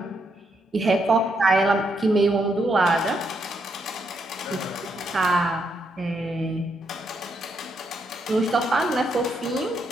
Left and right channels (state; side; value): normal; both; correlation 0.78